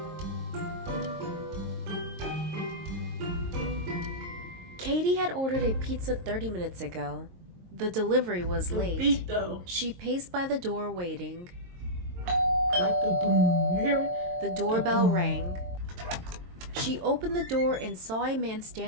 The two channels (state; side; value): late; left; 22 ms